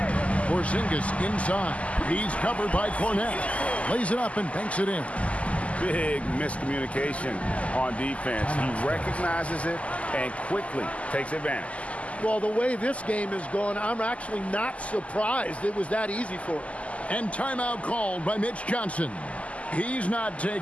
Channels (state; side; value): late; right; 0.065 ms